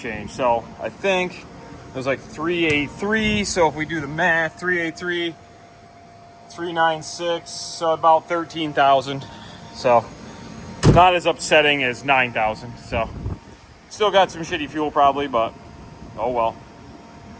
So I think it was like 383. So if we do the math, 383, 396, so about 13,000. So not as upsetting as 9,000. So still got some shitty fuel probably, but oh well.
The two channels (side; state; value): both; identical; correlation 1.00